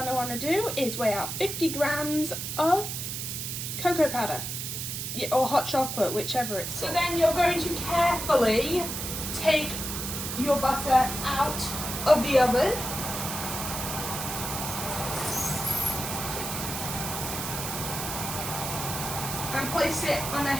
to do is weigh out 50 grams of cocoa powder. Yeah, or hot chocolate, whichever it's called. So then you're going to carefully take your butter out of the oven. And place it on a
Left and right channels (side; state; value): right; noise; hiss, 5 dB below the sound